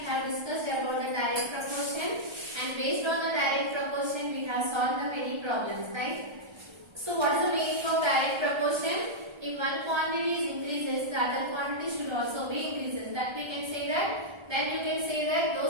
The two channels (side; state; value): left; late; 1.3 ms